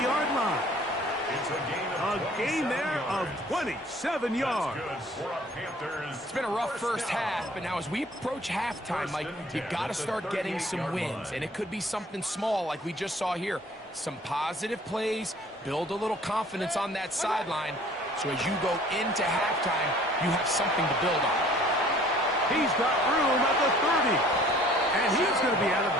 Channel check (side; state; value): both; normal; correlation 0.53